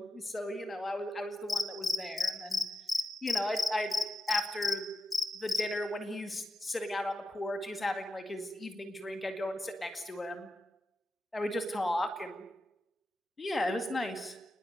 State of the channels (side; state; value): both; normal; correlation 0.89